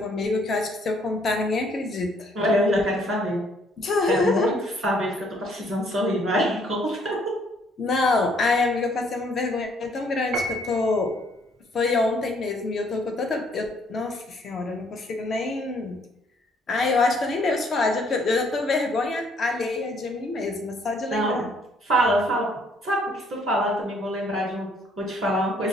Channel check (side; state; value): both; normal; correlation 0.65